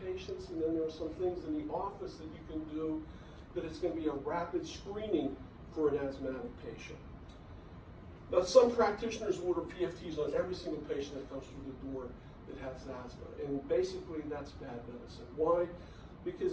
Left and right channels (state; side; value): identical; both; correlation 1.00